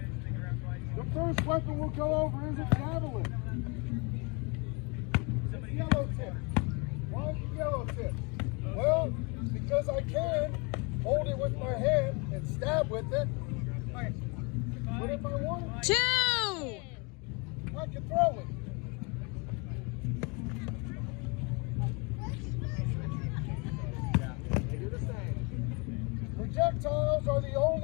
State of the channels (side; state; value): right; quieter; 30.7 dB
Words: The first weapon we'll go over is a javelin. It's yellow tip. Why is it yellow tip? Well, because I can hold it with my hand and stab with it. But if I wanted to, 2! I can throw it. Projectiles are the